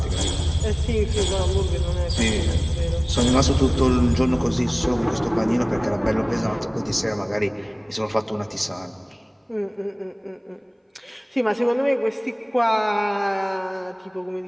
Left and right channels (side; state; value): both; identical; correlation 1.00